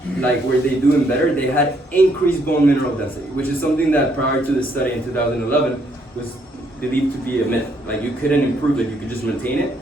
like were they doing better, they had increased bone mineral density, which is something that prior to the study in 2011 was believed to be a myth. Like you couldn't improve it, you could just maintain it.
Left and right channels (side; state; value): both; normal; correlation 0.71